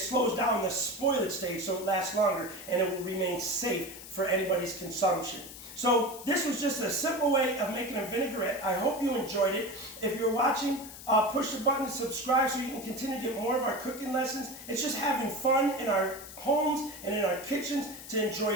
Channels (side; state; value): left; noise; hiss, 14 dB below the sound